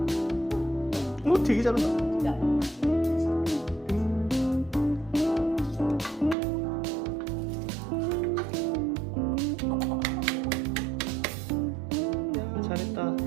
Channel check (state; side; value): drops out; left; at 6.4 s